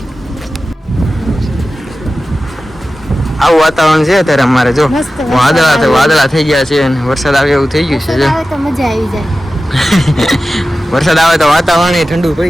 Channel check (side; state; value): both; normal; correlation 0.94